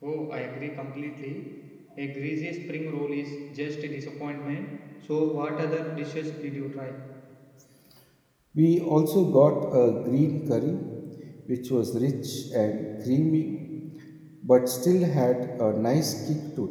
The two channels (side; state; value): both; identical; correlation 1.00